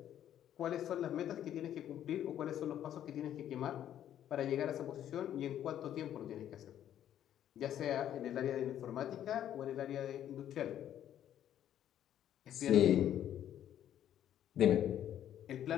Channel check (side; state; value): right; quieter; 10.9 dB